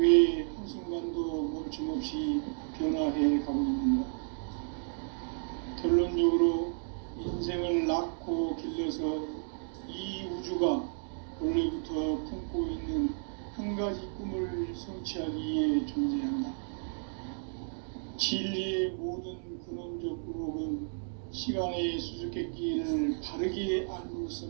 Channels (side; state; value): left; silent; digital silence